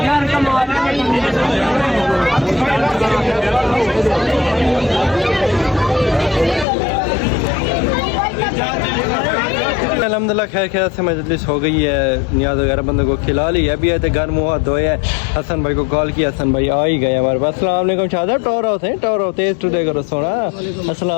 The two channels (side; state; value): right; drops out; at 6.7 s